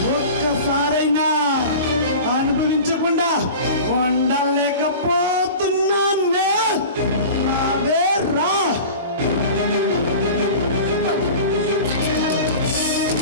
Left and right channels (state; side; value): inverted; both; correlation -0.36